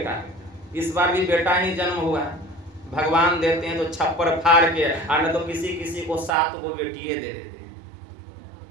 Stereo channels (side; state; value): left; drops out; at 6.3 s